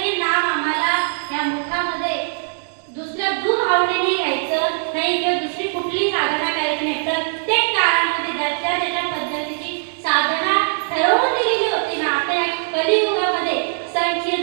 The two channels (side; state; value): left; silent; digital silence